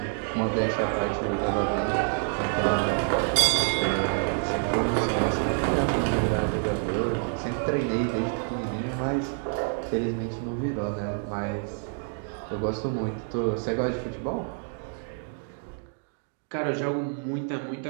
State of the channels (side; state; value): left; silent; 55 dB below the other